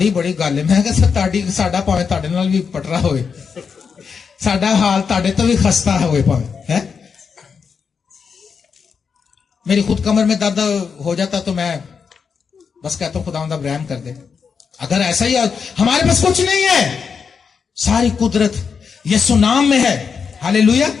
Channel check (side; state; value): right; quieter; 6.0 dB